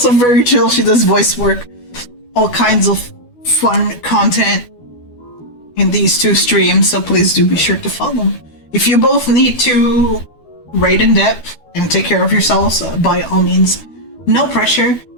very chill. She does voice work, all kinds of fun content in these two streams, so please do be sure to follow. If you both need to rate in depth and take care of yourselves, by all means, no pressure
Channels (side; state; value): right; late; 12 ms